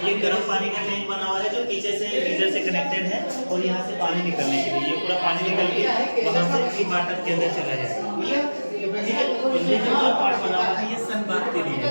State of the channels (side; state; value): both; inverted; correlation -1.00